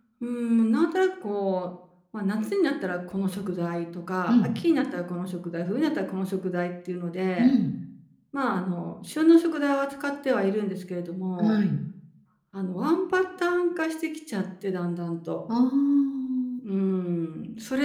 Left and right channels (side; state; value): both; identical; correlation 1.00